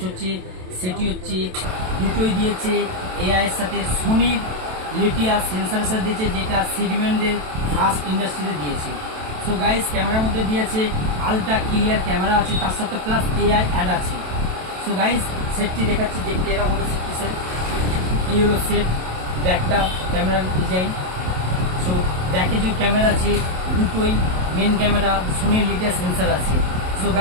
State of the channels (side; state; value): left; late; 27 ms